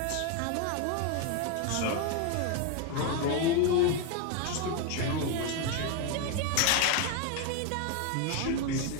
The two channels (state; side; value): different; both; correlation 0.01